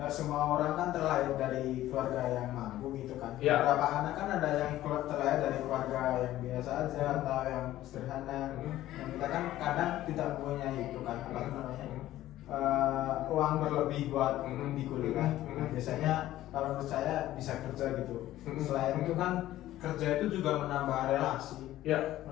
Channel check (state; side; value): quieter; right; 14.4 dB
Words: semua orang kan terlahir dari keluarga yang mampu gitu kan. Ya. Beberapa anak kan ada yang terlahir dari keluarga yang biasa aja atau yang sederhana. Yang kita kan kadang tidak mempunyai itu kan, apa namanya, uang berlebih buat di kuliah. Nah, biasanya kalau menurut saya bisa kerja gitu. Selain itu kan kerja itu juga menambah relasi.